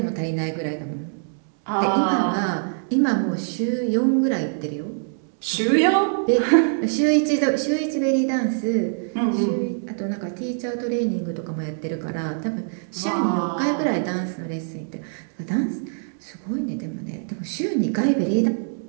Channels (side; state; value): left; silent; digital silence